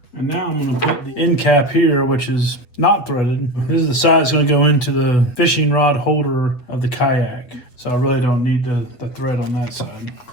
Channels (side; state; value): right; late; 8.0 ms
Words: And now I'm going to put the end cap here, which is not threaded. This is the side that's going to go into the fishing rod holder of the kayak. So I really don't need the thread on that side.